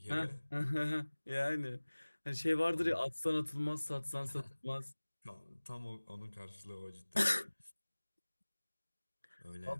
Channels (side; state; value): both; inverted; correlation -1.00